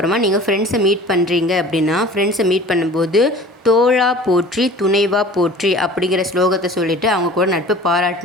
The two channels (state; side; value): normal; both; correlation 0.44